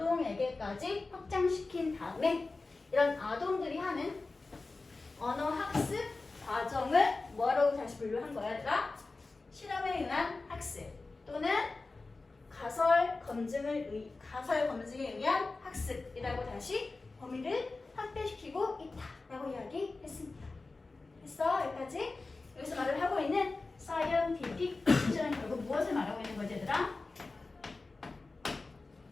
확장시킨 다음에 이런 아동들이 하는 언어 학습 과정을 뭐라고 다시 분류한 거야, 얘들아? 실험에 의한 학습 또는 가설 검증에 의한 학습이라고 다시 범위를 확대시키고 있다라고 이야기했습니다. 됐어? 여기까지? 여기서 말을 하고 있는 scientific precision은 결국 무엇을 말하고 있는 거지, 얘들아?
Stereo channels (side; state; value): right; quieter; 3.6 dB